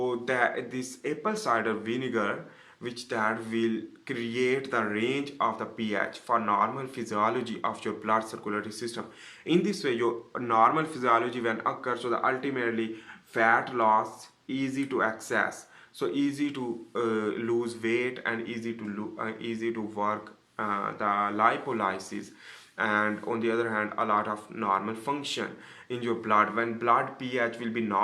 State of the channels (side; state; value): both; identical; correlation 1.00